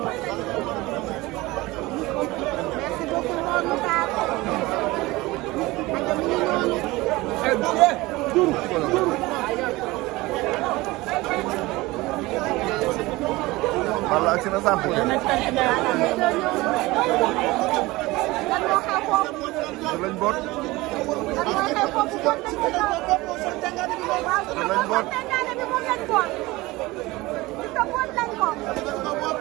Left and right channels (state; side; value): quieter; left; 20.6 dB